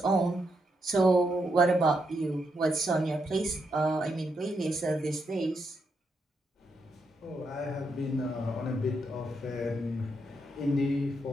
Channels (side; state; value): both; normal; correlation 0.80